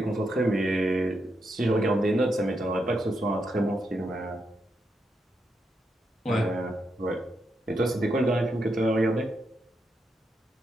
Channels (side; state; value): both; normal; correlation 0.83